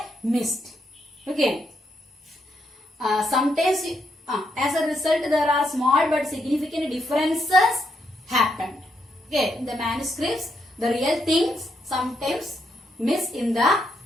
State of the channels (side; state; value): both; normal; correlation 0.78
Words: missed. Okay. Sometimes as a result there are small but significant differences happened. Okay. In the manuscripts, the real things sometimes miss in the